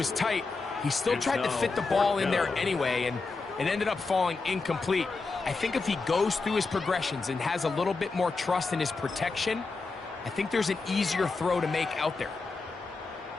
tight, he still tried to fit the ball in there anyway, and it ended up falling incomplete. I think if he goes through his progressions and has a little bit more trust in his protection, I think there's an easier throw to make out there.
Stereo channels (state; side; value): quieter; right; 4.0 dB